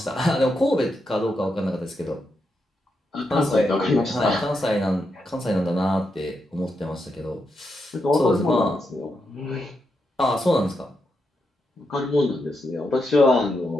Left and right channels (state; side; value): normal; both; correlation 0.84